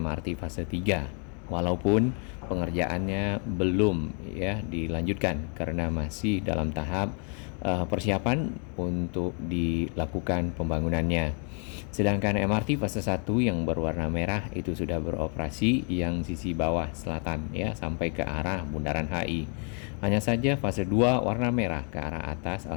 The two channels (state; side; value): quieter; right; 39.5 dB